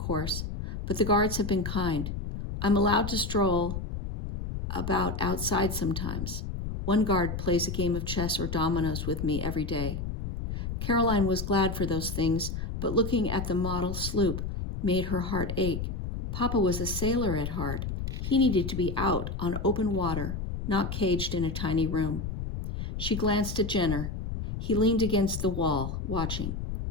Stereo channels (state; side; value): noise; left; rumble, 5 dB below the sound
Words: But the guards have been kind. I'm allowed to stroll about outside sometimes. One guard plays a game of chess or dominoes with me every day." Caroline was glad for those things, but looking at the model sloop made her heart ache. Papa was a sailor at heart. He needed to be out on open water, not caged in a tiny room. She glanced at Jenner. He leaned against the wall, watching.